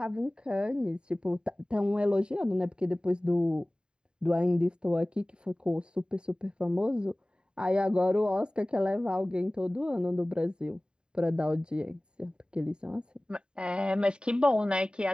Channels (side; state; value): left; late; 0.049 ms